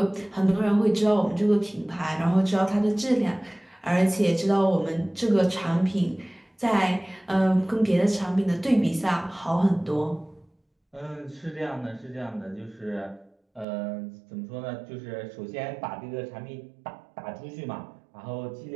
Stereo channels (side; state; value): left; drops out; at 13.7 s